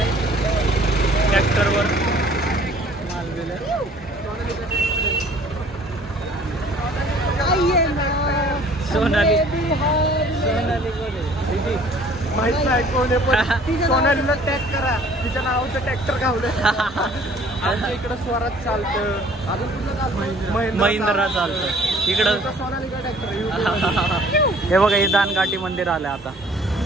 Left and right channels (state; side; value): normal; both; correlation 0.54